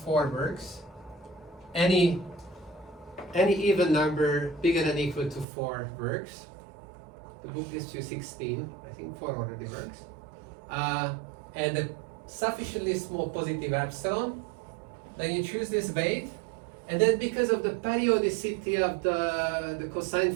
works. Any even number bigger than or equal to 4 works. The book gives you 16. I think 4 already works. And a sufficiently small positive epsilon. Then you choose this weight, and then because of the periodicity of the cosine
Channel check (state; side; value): drops out; left; at 5.5 s